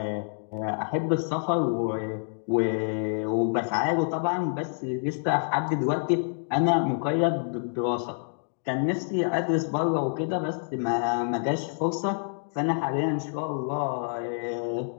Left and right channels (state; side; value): silent; right; digital silence